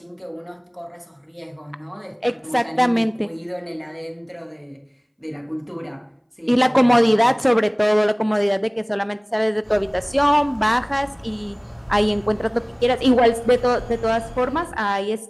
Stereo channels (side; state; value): both; identical; correlation 1.00